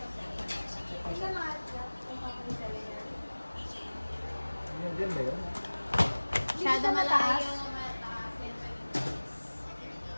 Isa mga kung ako sa layer. Yan ba yun? Masyado mataas.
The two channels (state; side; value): inverted; both; correlation -1.00